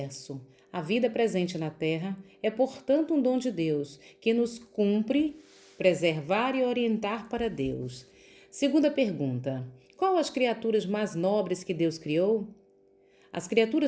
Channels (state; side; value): identical; both; correlation 1.00